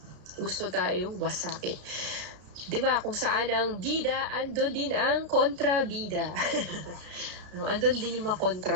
Gusto tayong wasakin. Diba, kung saan ang bida, andun din ang kontrabida. No, andun din yung mga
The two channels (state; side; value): late; left; 33 ms